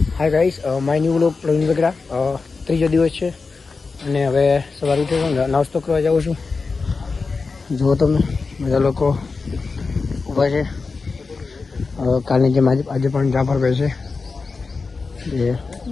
Hi guys, my new vlog Pravin Vegada. ત્રીજો દિવસ છે અને હવે સવારે ઉઠ્યો છું, નાસ્તો કરવા જાઉં છું. જુઓ તમે બધા લોકો ઊભા છે. કાલની જેમ આજે પણ જાફરભાઈ છે જે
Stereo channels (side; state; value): right; quieter; 4.4 dB